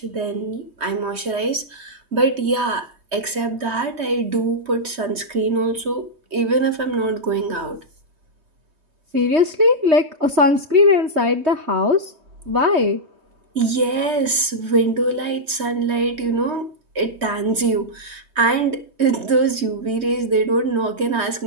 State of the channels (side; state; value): left; late; 3.2 ms